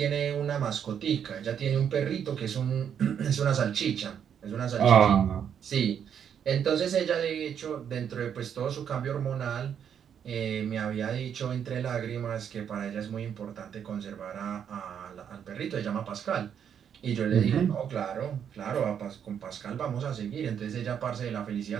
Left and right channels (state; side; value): quieter; left; 8.4 dB